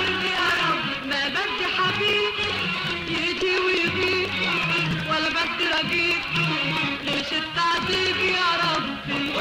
يا ربي. ما بدي حبيب يجي ويغيب ولا بدي رقيب ليش التعذيب يا ربي.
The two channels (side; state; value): both; identical; correlation 1.00